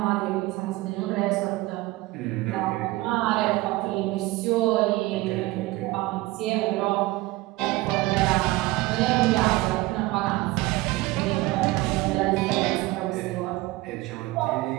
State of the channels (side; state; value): left; quieter; 19.6 dB